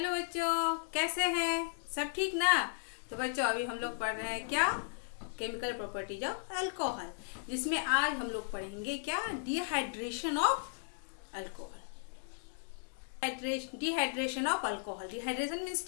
बच्चों, कैसे हैं? सब ठीक ना? तो बच्चों अभी हम लोग पढ़ रहे हैं क्या, केमिकल प्रॉपर्टीज ऑफ अल्कोहल, जिसमें आज हम लोग पढ़ेंगे क्या, dehydration of alcohol. Dehydration of alcohol. Dehydration means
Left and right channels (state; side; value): silent; right; 54 dB below the other